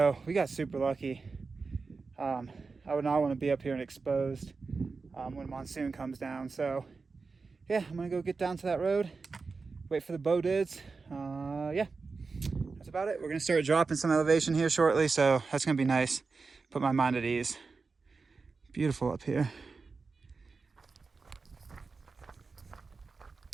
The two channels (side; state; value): left; quieter; 4.4 dB